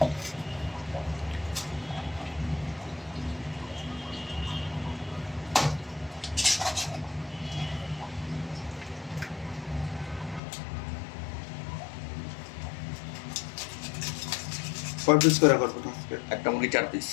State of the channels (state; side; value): drops out; right; at 10.4 s